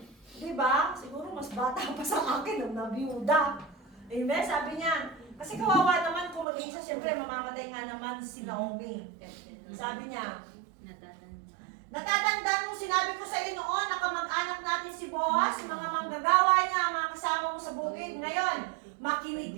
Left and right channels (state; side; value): drops out; left; at 6.5 s